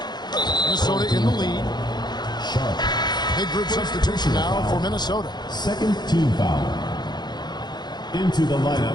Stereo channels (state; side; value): late; right; 0.21 ms